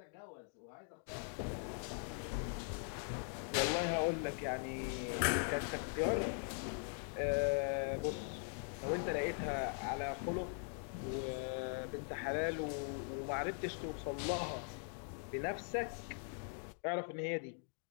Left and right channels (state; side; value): silent; right; 50 dB below the other